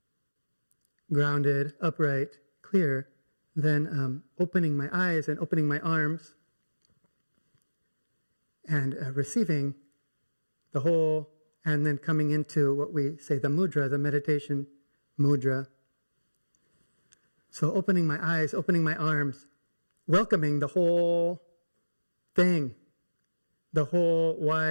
grounded, upright, clear, then opening my eyes and opening my arms and receiving the whole, and then coming into what we say, the mudra, the meditation mudra. So opening my eyes, opening my arms, welcoming the whole thing, the whole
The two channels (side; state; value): both; inverted; correlation -1.00